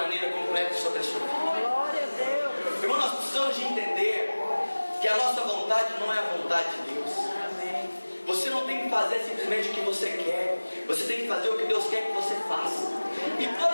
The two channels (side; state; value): both; inverted; correlation -1.00